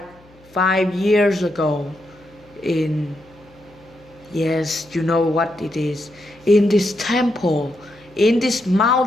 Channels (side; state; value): left; noise; hum, 27 dB below the sound